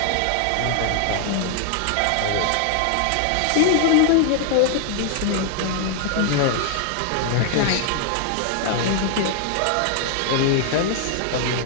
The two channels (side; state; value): both; different; correlation 0.00